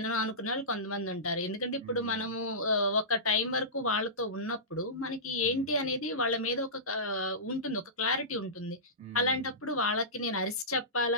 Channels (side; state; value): both; normal; correlation -0.20